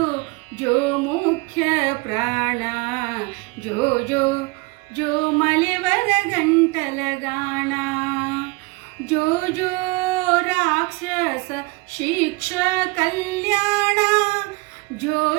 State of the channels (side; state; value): left; quieter; 26.3 dB